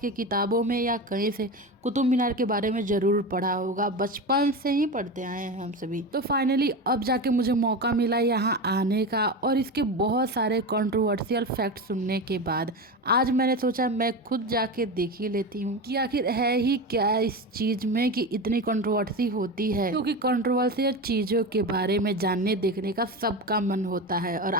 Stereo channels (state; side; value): normal; both; correlation 0.23